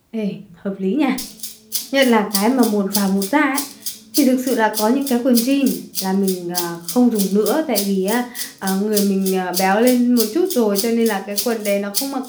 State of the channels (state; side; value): identical; both; correlation 1.00